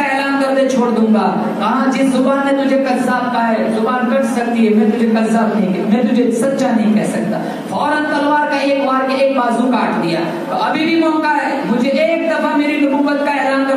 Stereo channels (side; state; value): both; identical; correlation 1.00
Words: ऐलान कर दे, छोड़ दूंगा। कहा जिस जुबान ने तुझे कज़्ज़ाब कहा है, जुबान कट सकती है, मैं तुझे कज़्ज़ाब नहीं, मैं तुझे सच्चा नहीं कह सकता। फौरन तलवार का एक वार के एक बाजू काट दिया। तो अभी भी मौका है, मुझे एक दफा मेरी नबुव्वत का ऐलान